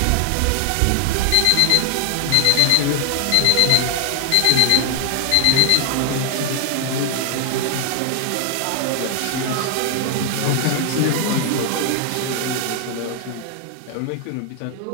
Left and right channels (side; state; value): both; different; correlation 0.00